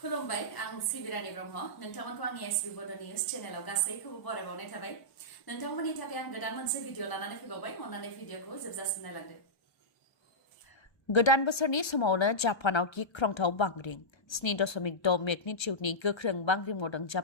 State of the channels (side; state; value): right; late; 1.3 ms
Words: आं सिबिरानि ब्रह्म नोंथांमोनखौ आंनि एसबि बड' निउज चेनेलाव गासैखौबो बरायबावनाय थाबाय नोंथांमोननि थाखाय आं गोदान मोनसे भिडिअ लानानै फैबावबाय अन्नानै भिडिअखौ जोबजासिम नायलांदो गोदान बोसोरनि समावनो जापानाव गिख्रंथाव बांग्रिं 7.6 मेगनिट्युडनि गोख्रों बांग्रिं मावदों